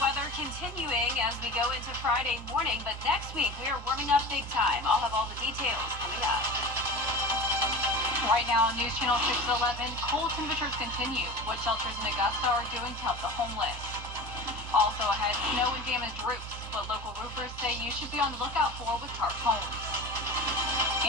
weather continuing as we go into Friday morning, but next week we are warming up big time. I'll have all the details coming up. Right now on News Channel 611, cold temperatures continue. What shelters in Augusta are doing to help the homeless. Also ahead, snow and damaged roofs, what local roofers say you should be on the lookout for with tarp homes.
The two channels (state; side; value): normal; both; correlation 0.32